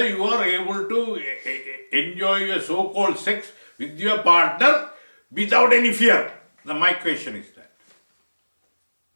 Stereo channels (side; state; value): both; inverted; correlation -1.00